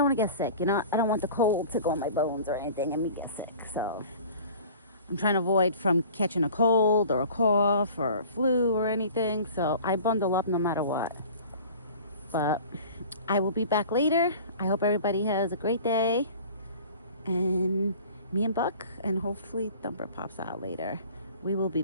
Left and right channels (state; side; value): inverted; both; correlation -0.44